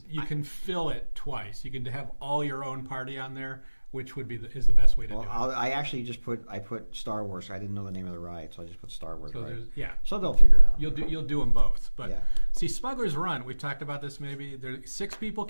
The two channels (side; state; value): both; inverted; correlation -1.00